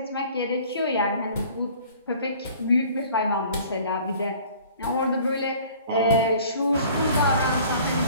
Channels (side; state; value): both; inverted; correlation -0.50